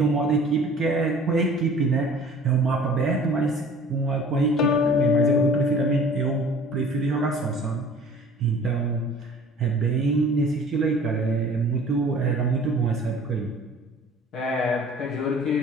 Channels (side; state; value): both; normal; correlation 0.48